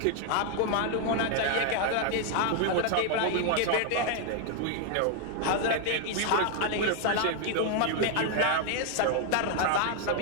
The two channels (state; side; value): different; both; correlation 0.00